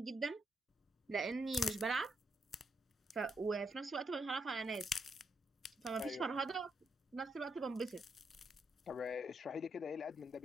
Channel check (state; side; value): normal; both; correlation 0.79